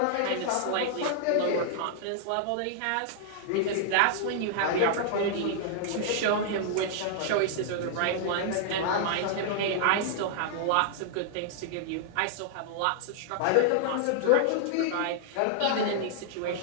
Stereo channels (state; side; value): different; both; correlation -0.01